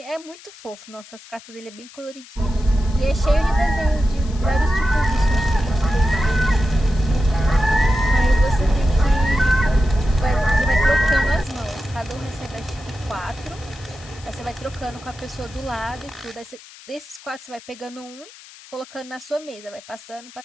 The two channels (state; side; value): noise; left; hiss, 20 dB below the sound